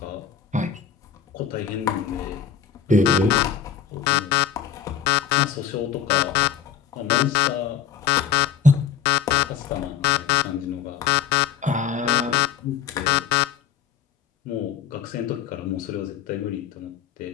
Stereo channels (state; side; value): quieter; right; 7.9 dB